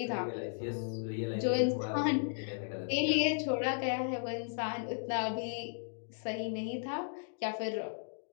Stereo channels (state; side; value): silent; right; digital silence